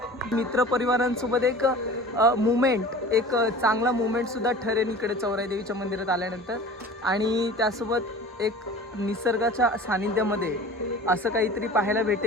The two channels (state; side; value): normal; both; correlation 0.41